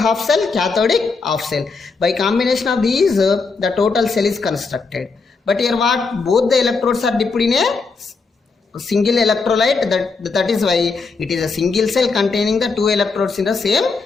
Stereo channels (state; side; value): quieter; right; 4.4 dB